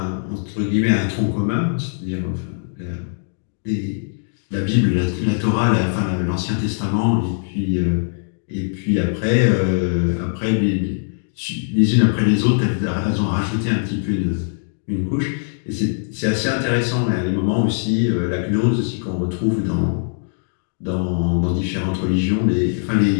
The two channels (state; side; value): silent; right; digital silence